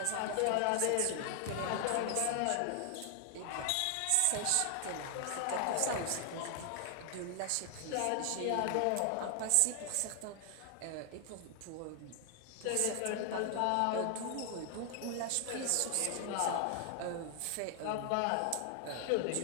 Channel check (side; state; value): both; different; correlation 0.00